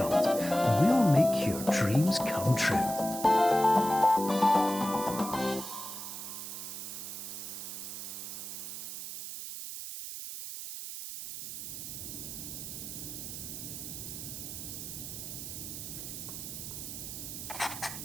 we'll make your dreams come true.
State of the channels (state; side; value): noise; right; hiss, 8 dB below the sound